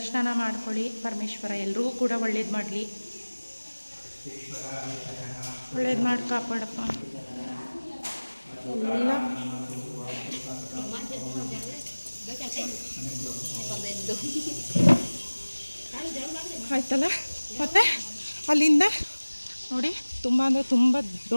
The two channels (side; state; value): both; inverted; correlation -1.00